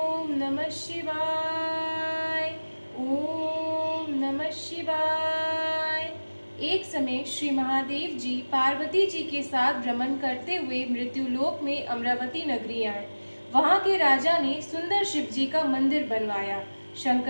नमः शिवाय। ओम नमः शिवाय। एक समय श्री महादेव जी पार्वती जी के साथ भ्रमण करते हुए मृत्युलोक में अमरावती नगरी आए। वहां के राजा ने सुंदर शिव जी का मंदिर बनवाया।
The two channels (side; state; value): both; inverted; correlation -1.00